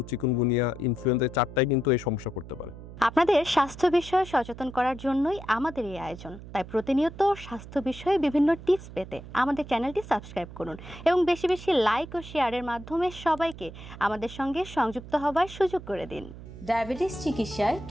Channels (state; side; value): noise; right; hum, 14 dB below the sound